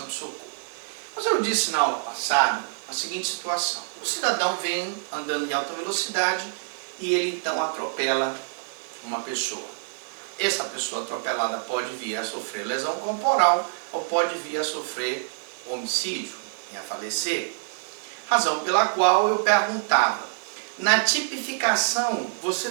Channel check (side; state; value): left; silent; digital silence